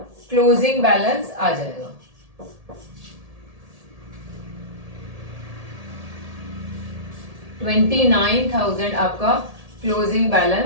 closing balance आ जाएगा। $29,000 आपका क्लोजिंग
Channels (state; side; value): late; left; 1.7 ms